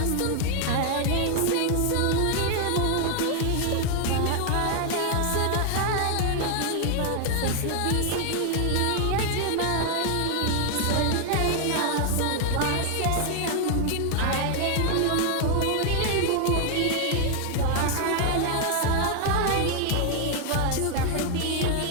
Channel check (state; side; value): different; both; correlation 0.00